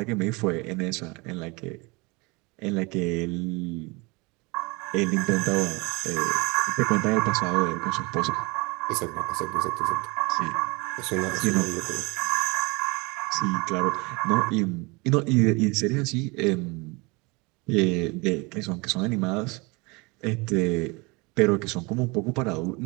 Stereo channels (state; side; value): quieter; left; 26.9 dB